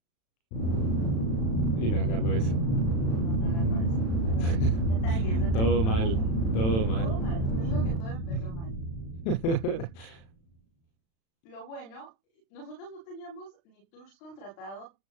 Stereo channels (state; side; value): late; right; 36 ms